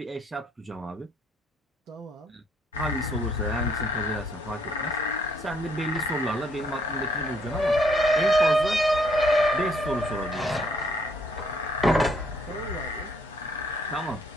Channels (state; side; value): normal; both; correlation 0.68